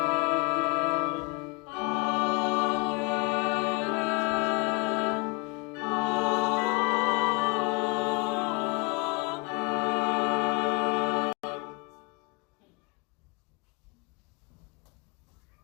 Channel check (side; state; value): right; quieter; 27.8 dB